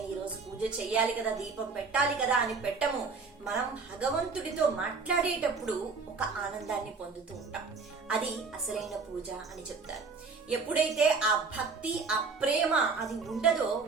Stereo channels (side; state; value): left; quieter; 4.5 dB